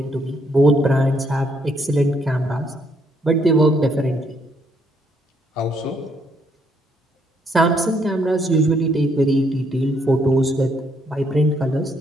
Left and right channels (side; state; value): both; normal; correlation 0.72